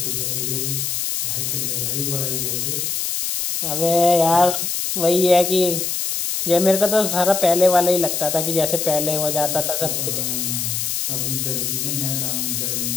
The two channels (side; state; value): left; noise; hiss, 1 dB below the sound